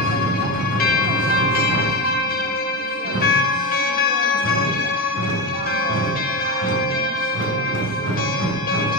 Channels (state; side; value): normal; both; correlation 0.16